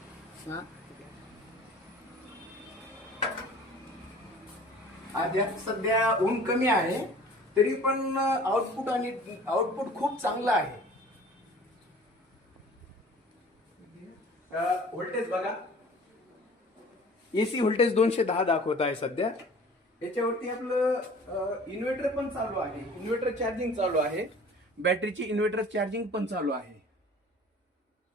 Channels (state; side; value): normal; both; correlation 0.47